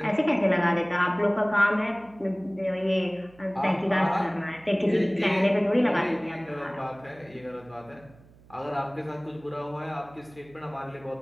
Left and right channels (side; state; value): right; noise; hum, 25 dB below the sound